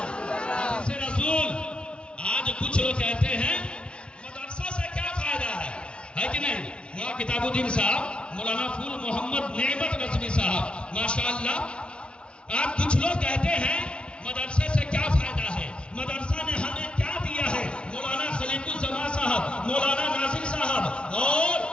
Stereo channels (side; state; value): right; late; 0.057 ms